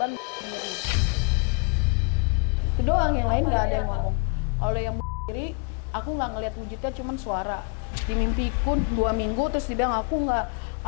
Itu doang, yang lain Apa nggak ada dia, yang Pak? ngomong. Kalau yang sendiri, aku nggak ngeliat wujudnya, cuman suara. Di mimpiku 2 minggu terus dia bilang aku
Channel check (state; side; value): quieter; right; 34.0 dB